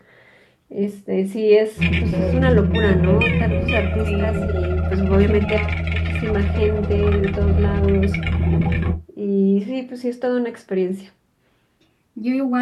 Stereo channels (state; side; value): identical; both; correlation 1.00